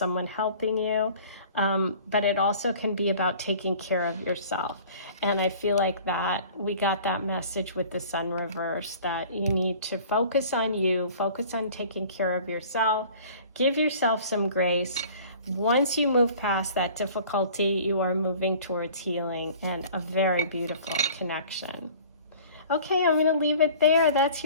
helping you, but it also can be about taking care of yourself. And I feel like that we got that message with the sun reverse, that you need to focus on you, focus on taking care of yourself, give yourself some grace. Once you move past that difficulty, you are moving towards healing and a very beautiful connection. Okay, I'm going to leave it there. That's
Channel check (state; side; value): inverted; both; correlation -0.47